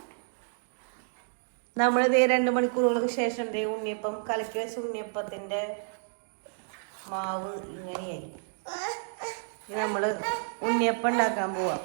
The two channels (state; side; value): silent; left; digital silence